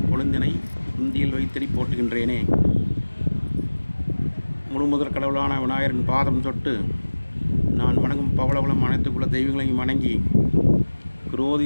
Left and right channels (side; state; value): both; inverted; correlation -1.00